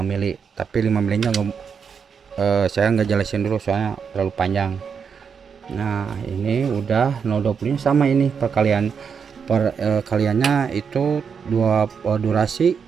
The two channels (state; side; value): quieter; left; 6.5 dB